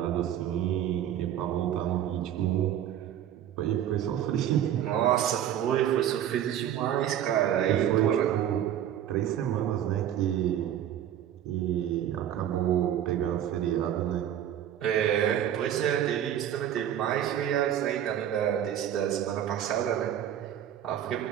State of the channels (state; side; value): quieter; left; 10.7 dB